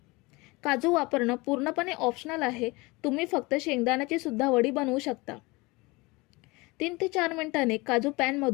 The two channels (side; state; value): right; quieter; 24.2 dB